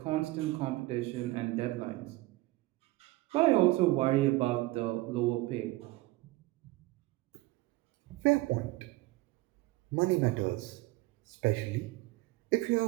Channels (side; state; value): left; quieter; 19.6 dB